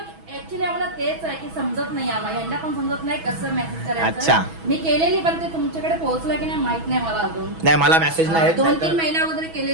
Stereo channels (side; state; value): left; late; 6.1 ms